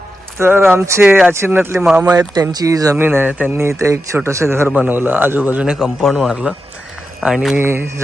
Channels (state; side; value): normal; both; correlation 0.89